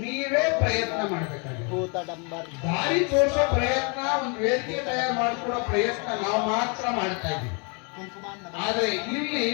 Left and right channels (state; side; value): quieter; right; 34.6 dB